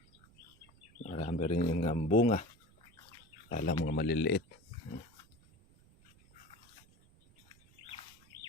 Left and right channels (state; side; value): noise; right; rumble, 27 dB below the sound